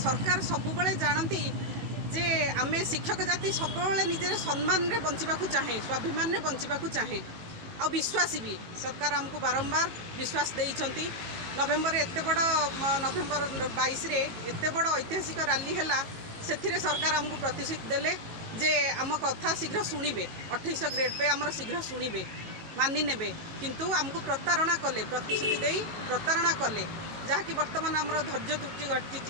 सबुबले जानती जे आमे शिक्षक जाति सब निजे सम्मान रे बंचिबा चाहे स्वाभिमान रे बंचिबा चाहे आ विश्वास भी सरकार हमको बारंबार विश्वास देइछंती। नवेम्बर एत बड़ नवेम्बर 22 रे एत बड़ ऐतिहासिक रैली है से सरकार हमको प्रतिश्रुति देले जे आम कथा शीघ्र शुणिबे 2800 ग्रेड पे आमर शीघ्र शुणिबे मानि नेबे किंतु हमको प्रतारणा कले प्रतिश्रुति देई प्रतारणा कले जहाँकि बर्तमान आमर धैर्य त्रुटि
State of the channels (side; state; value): left; late; 18 ms